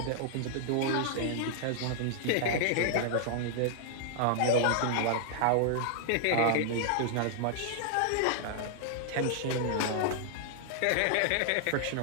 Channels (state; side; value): different; both; correlation 0.00